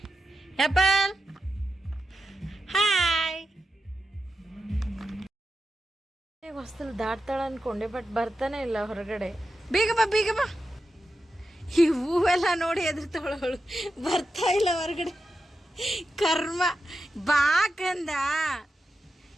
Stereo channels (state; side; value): normal; both; correlation 0.89